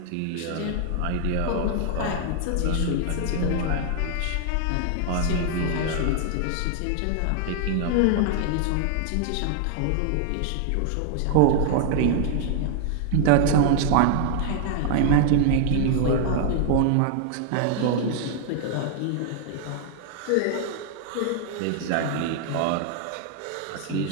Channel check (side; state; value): both; different; correlation 0.00